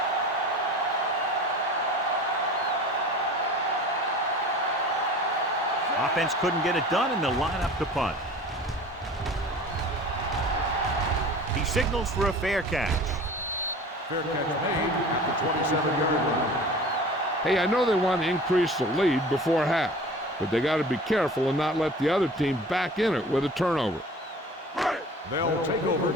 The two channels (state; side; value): normal; both; correlation 0.41